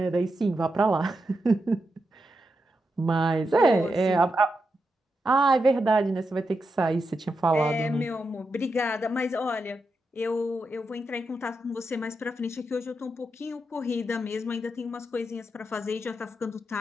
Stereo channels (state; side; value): normal; both; correlation 0.86